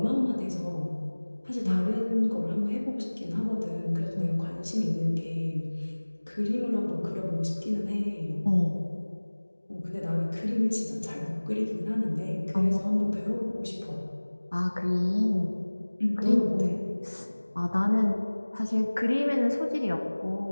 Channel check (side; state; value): both; inverted; correlation -1.00